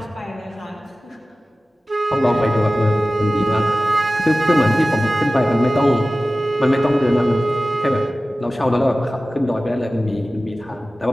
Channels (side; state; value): both; normal; correlation 0.96